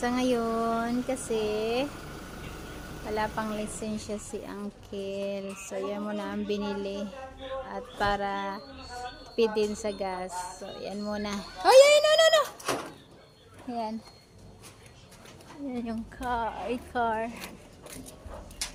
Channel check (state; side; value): identical; both; correlation 1.00